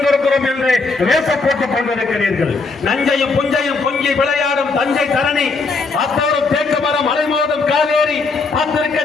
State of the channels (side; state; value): right; quieter; 4.1 dB